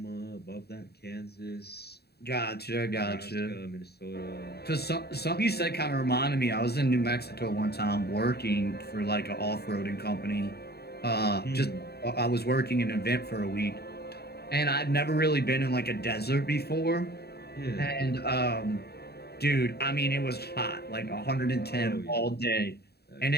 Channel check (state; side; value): late; right; 0.47 ms